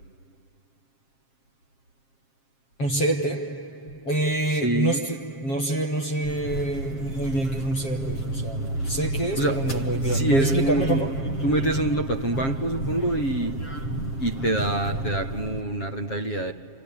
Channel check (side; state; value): right; late; 7.4 ms